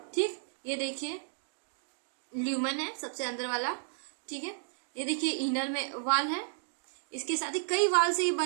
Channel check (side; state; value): left; silent; digital silence